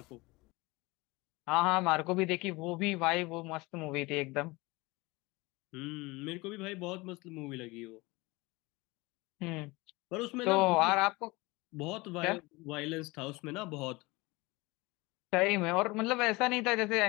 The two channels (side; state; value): right; quieter; 23.4 dB